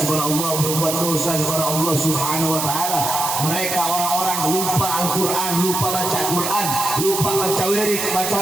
kepada Allah, berbuat dosa kepada Allah Subhanahu wa ta'ala. Mereka orang-orang lupa Al-Quran, lupa baca Quran, lupa baca wirid, baca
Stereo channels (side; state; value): right; noise; hiss, 2 dB below the sound